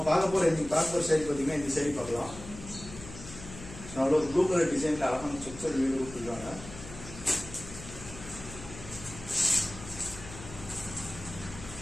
பார்க்க போற saree பாத்தீங்கன்னா இந்த saree பார்க்கலாம். சோ அதோட ப்ளூ கலர் டிசைன்ல அழகான ஸ்ட்ரக்சர் வீடியோ கொடுத்திருக்காங்க.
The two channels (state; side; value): noise; left; hum, 14 dB below the sound